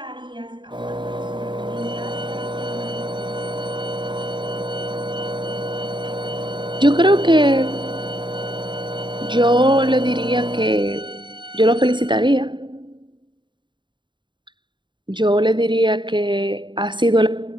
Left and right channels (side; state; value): left; late; 0.23 ms